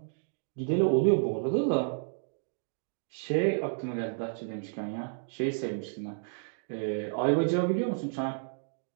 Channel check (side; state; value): left; silent; digital silence